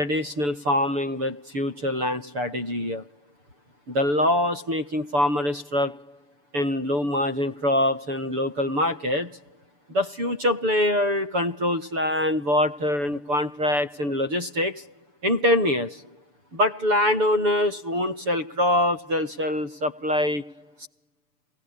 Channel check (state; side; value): late; left; 6.9 ms